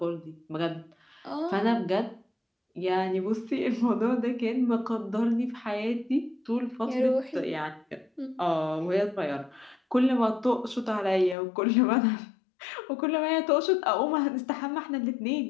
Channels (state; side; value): drops out; right; at 11.4 s